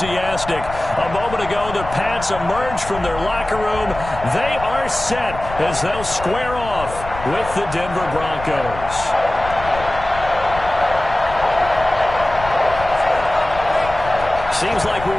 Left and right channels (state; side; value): noise; left; rumble, 12 dB below the sound